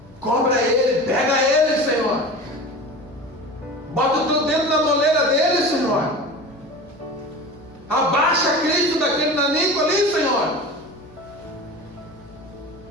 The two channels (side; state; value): left; noise; hum, 26 dB below the sound